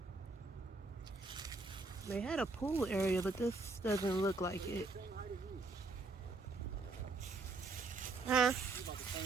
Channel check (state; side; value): quieter; left; 3.5 dB